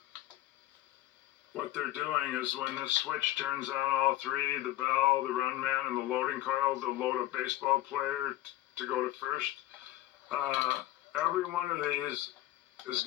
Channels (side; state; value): right; quieter; 15.4 dB